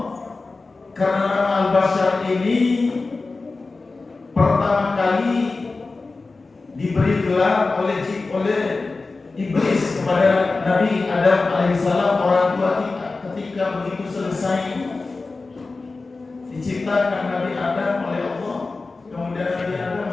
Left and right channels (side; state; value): right; quieter; 3.7 dB